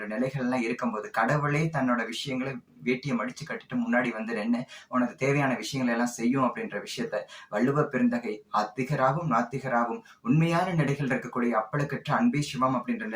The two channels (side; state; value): both; identical; correlation 1.00